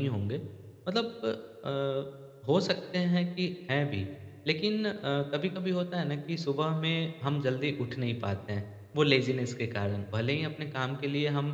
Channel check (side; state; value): both; identical; correlation 1.00